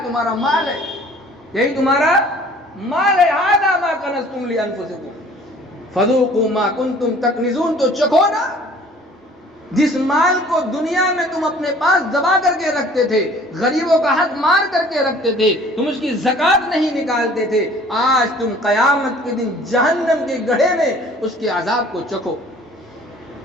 تمہارا مال ہے، یہی تمہارا مال ہے۔ ھذا ما کنزتم لانفسکم فذوقوا ما کنتم تکنزون، تو چکھو نا جس مال کو دنیا میں تم اپنے پاس دبا کر کے رکھتے تھے، غریبوں کا حق مار کر کے رکھتے تھے، تم اس کی زکوٰۃ نہیں نکالتے تھے، آج تم قیامت کے دن جہنم کے گڑھے میں اس کے عذاب کو چکھو۔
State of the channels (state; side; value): normal; both; correlation 0.52